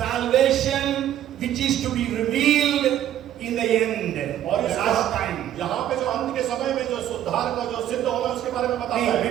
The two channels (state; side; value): quieter; left; 11.5 dB